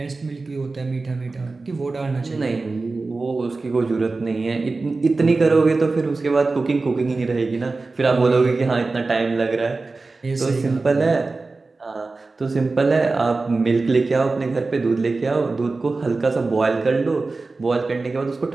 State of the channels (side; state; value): left; quieter; 3.7 dB